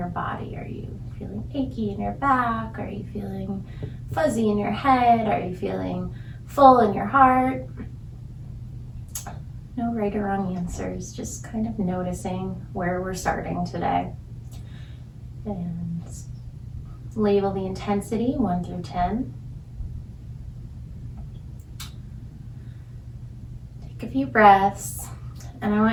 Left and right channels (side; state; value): both; identical; correlation 1.00